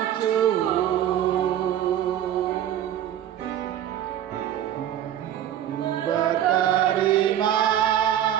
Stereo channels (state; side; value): quieter; left; 11.0 dB